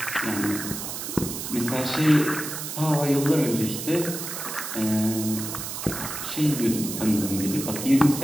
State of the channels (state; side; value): noise; right; hiss, 6 dB below the sound